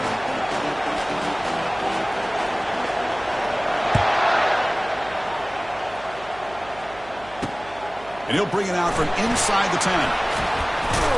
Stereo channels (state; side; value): noise; right; hum, 20 dB below the sound